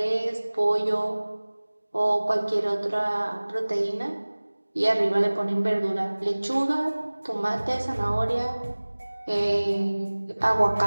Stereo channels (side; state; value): both; inverted; correlation -1.00